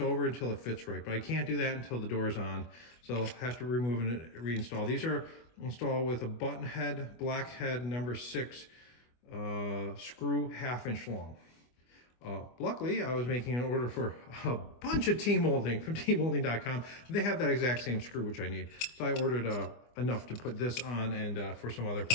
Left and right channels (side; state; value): right; late; 25 ms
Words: until it fits right, but I can't do that until the door's on. So I'll have to remove and reinstall. These are installed with a button head, black head, number 6 screw, 1/2 inch long. Luckily, I was making an order for a bunch of T-molding from T-molding.com. They have that exact same screw, which I need. So I ordered enough to put this on and for some other